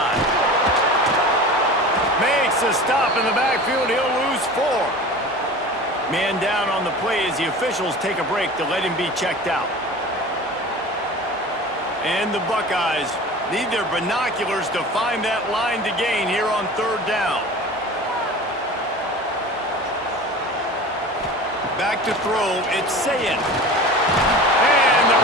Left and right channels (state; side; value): normal; both; correlation 0.37